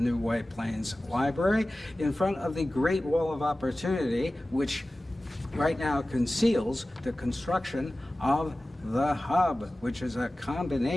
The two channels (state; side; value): normal; both; correlation 0.96